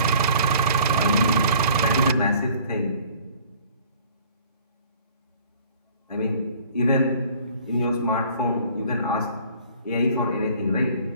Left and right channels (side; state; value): both; inverted; correlation -0.52